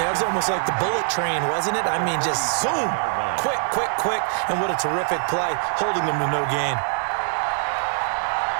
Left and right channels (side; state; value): left; silent; digital silence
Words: it was almost like the bullet train, wasn't it? I mean, just zoom. Quick, quick, quick. And what a terrific play, holding them to no gain.